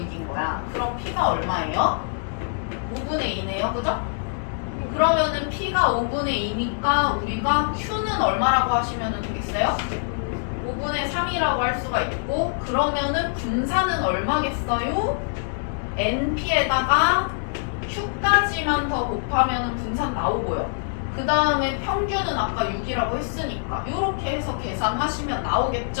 거야. 그럼 P가 얼마예요? 5분의 2네요. 그죠? 그러면은 P가 5분의 2니까 우리가 Q는 얼마라고 하시면 되겠어요? 5분의 3이라고 할 수가 있고, 그러면은 분산은 얼마겠어요? NP에다가 Q까지만 더 곱하면 분산 나오고요. 그 다음에 평균은 아까 6이라고 했으니까 이렇게 해서 계산하시면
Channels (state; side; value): silent; right; digital silence